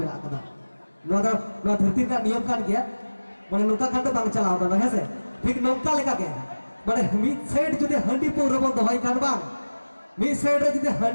মেনা কাদা নোয়া ধरती ᱨᱮᱱᱟᱜ নিয়ম কান গিয়া মানে নৌকা খান বাং চালাও দাদা হেসে ঠিক নৌকা লেকা গে মানে মিড সাইড যদি হাঁডি পৌর বন দহাই কান বাং মিড সাইড রে যদি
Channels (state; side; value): inverted; both; correlation -1.00